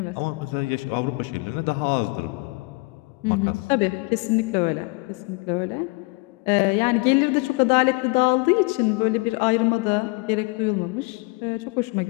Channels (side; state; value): right; quieter; 27.3 dB